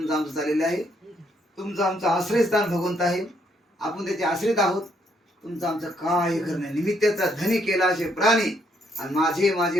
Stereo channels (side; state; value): both; normal; correlation 0.72